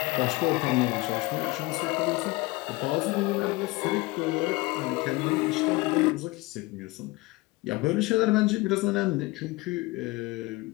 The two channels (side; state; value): right; quieter; 22.0 dB